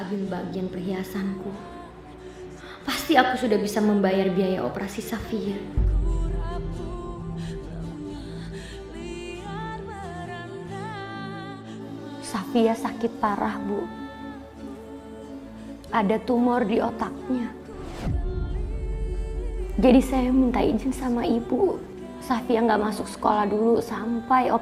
ambil bagian perhiasanku, pasti aku sudah bisa membayar biaya operasi Safia. Safia sakit parah, Bu. Ada tumor di otaknya. Jadi saya minta izin sama ibu. Safia nggak masuk sekolah dulu sampai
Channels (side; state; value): both; identical; correlation 1.00